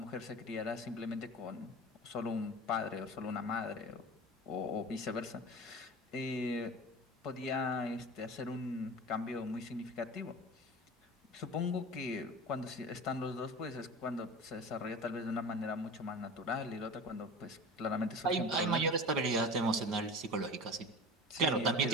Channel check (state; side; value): normal; both; correlation 0.34